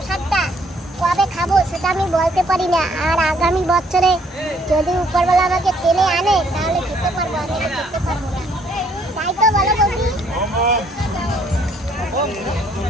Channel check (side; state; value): both; normal; correlation 0.65